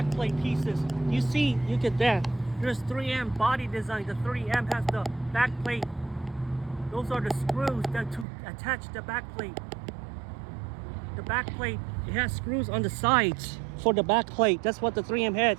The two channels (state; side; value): drops out; left; at 8.2 s